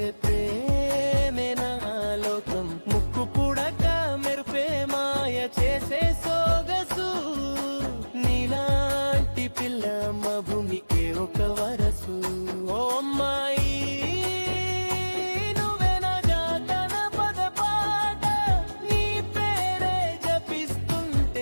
ప్రేమేనా లోకం, ముక్కు పుడక మెరుపే మాయ చేసే సోగసు, నీలాంటి పిల్ల మా భూమికే ఒక వరసు. ఓ అమ్మాయి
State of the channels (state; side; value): inverted; both; correlation -1.00